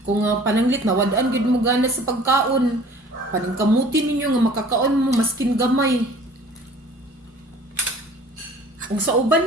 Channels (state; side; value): normal; both; correlation 0.49